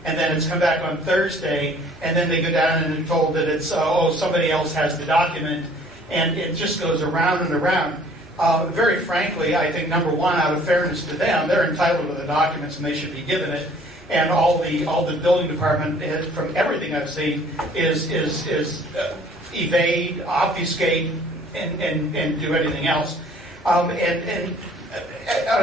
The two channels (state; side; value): normal; both; correlation 0.55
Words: And then it's come back on Thursday, and then they go down and are told that it's, somebody else has the document, and it just goes around and around. Very frankly, I think, number one, out of fairness to them, they're entitled to the documents and they should be given it. And all the building department, from everything I've seen, is evade, obfuscate, and do anything else. And on